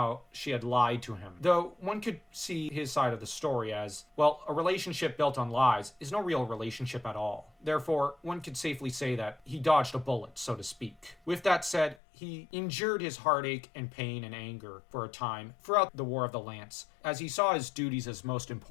she had lied to him. Though one could see his side of the story as, well, a relationship built on lies is no real relationship at all. Therefore, one could safely say that he dodged a bullet, so to speak. With that said, he endured his heartache and pain and anger for a time throughout the War of the Lance, as he saw his duties as most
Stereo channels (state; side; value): drops out; right; at 12.0 s